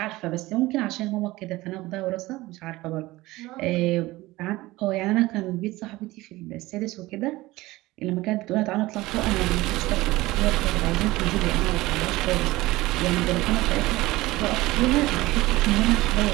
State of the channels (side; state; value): left; quieter; 19.1 dB